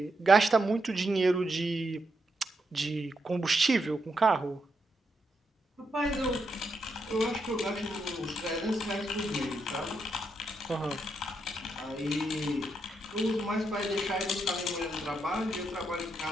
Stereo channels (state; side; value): normal; both; correlation 0.81